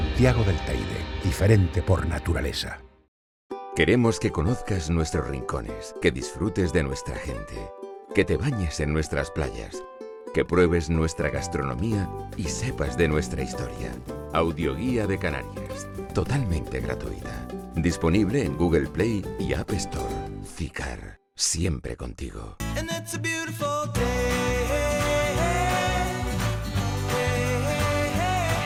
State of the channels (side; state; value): both; identical; correlation 1.00